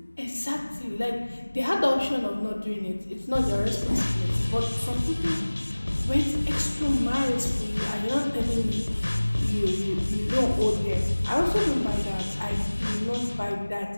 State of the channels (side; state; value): both; inverted; correlation -1.00